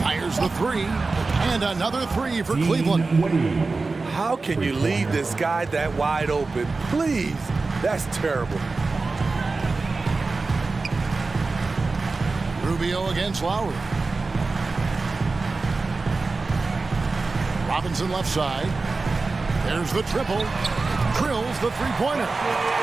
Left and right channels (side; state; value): left; quieter; 3.8 dB